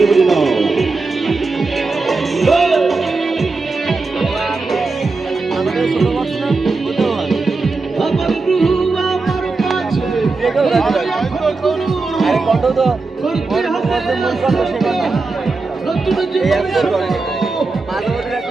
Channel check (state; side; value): quieter; left; 3.8 dB